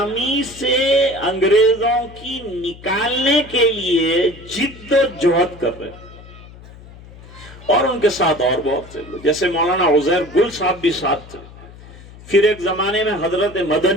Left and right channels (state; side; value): noise; left; hum, 19 dB below the sound